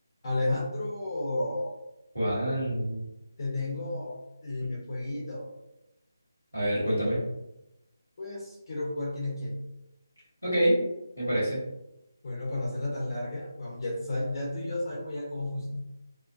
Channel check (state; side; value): inverted; both; correlation -0.90